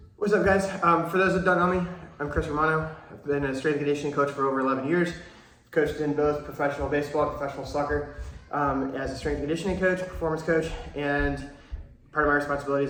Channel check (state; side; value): identical; both; correlation 1.00